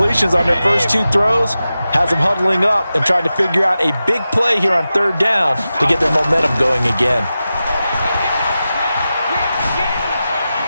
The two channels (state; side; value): inverted; both; correlation -0.93